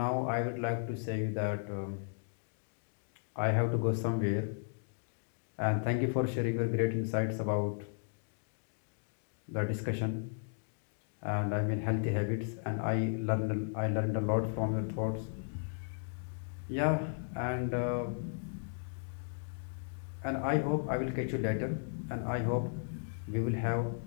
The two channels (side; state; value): right; silent; digital silence